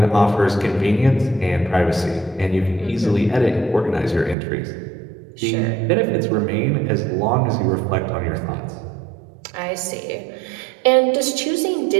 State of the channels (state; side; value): drops out; left; at 4.4 s